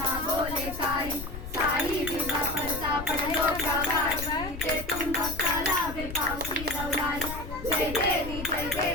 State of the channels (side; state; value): left; noise; rumble, 9 dB below the sound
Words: बोले काही साई विवा परता पडलो प्रवाही ते तुम भक्ताला वे पावसी रवलाई जय देवी